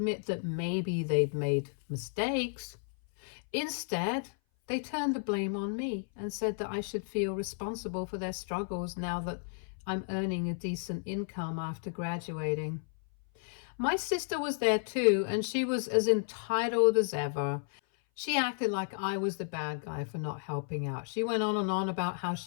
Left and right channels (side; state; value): right; silent; 56 dB below the other